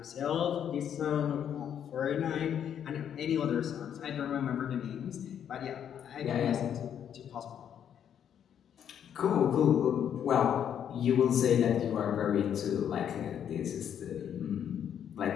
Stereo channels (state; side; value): quieter; right; 9.0 dB